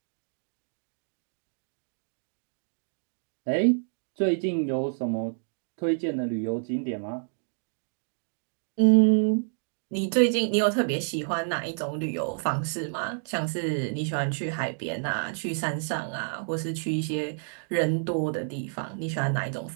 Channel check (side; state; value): left; silent; digital silence